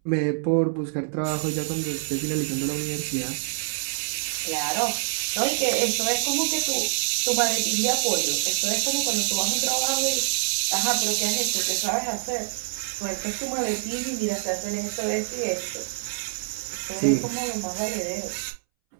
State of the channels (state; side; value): silent; left; 61 dB below the other